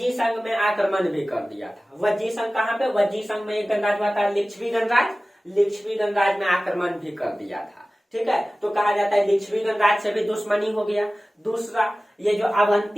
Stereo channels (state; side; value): normal; both; correlation 0.97